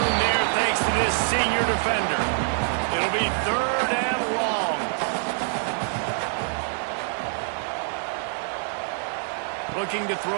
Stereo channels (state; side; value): silent; left; 59 dB below the other